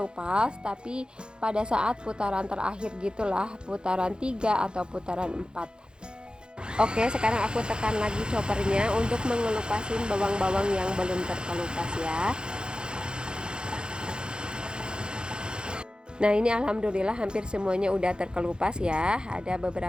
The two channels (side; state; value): left; late; 0.049 ms